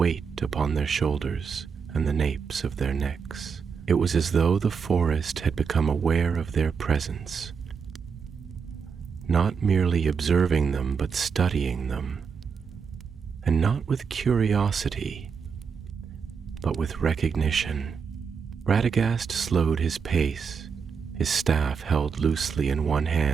upon their shoulders and the napes of their necks. It was as though the forest had become aware of their presence, not merely observing them but studying them, and not with curiosity, but with recognition. Radagast slowed his pace, his staff held loosely in one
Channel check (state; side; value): quieter; left; 6.0 dB